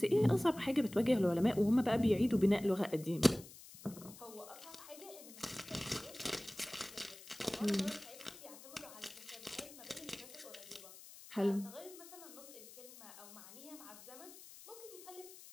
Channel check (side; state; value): left; noise; hiss, 17 dB below the sound